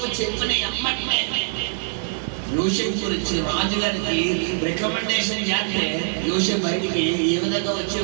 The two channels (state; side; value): silent; left; 59 dB below the other